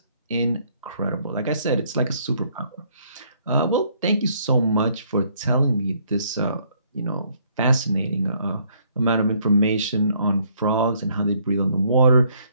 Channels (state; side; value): inverted; both; correlation -0.66